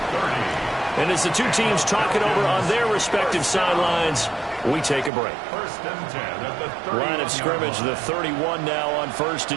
And as the two teams talk it over on their respective sidelines, we take a break. Line of scrimmage, the 31 now on 1st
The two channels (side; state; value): left; drops out; at 5.1 s